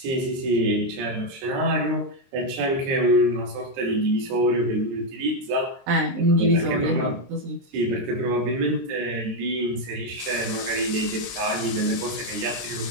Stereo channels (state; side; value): late; left; 22 ms